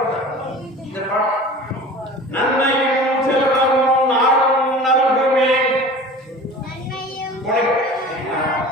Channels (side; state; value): both; normal; correlation 0.39